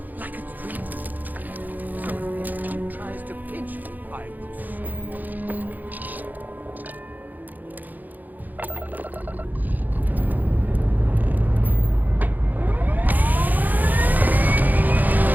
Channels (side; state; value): left; late; 0.084 ms